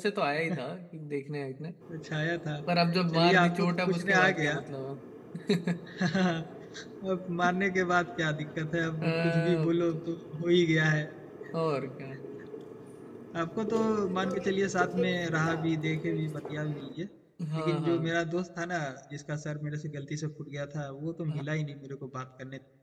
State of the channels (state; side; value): identical; both; correlation 1.00